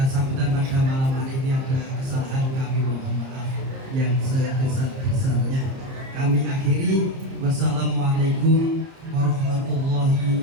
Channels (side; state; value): left; late; 30 ms